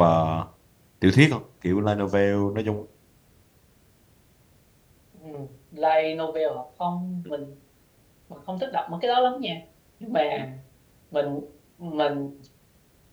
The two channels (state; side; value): identical; both; correlation 1.00